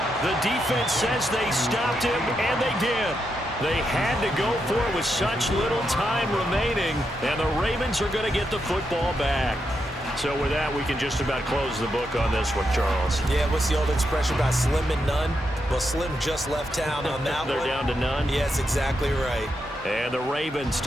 The defense says they stopped him, and they did. They had to go for it with such little time remaining, and the Ravens are going to get the football back. So with that, we can just about close the book on this one, Charles. Yeah, what's the old expression about slim and none? Well, Slim just left town on that They're one. down to none? Yes, exactly right. And the Ravens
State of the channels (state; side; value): normal; both; correlation 0.83